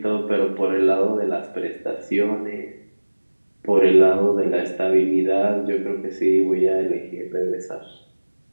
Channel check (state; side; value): inverted; both; correlation -1.00